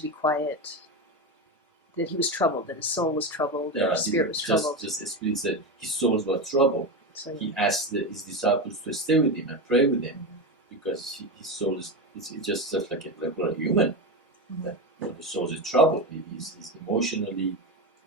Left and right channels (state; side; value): normal; both; correlation 0.17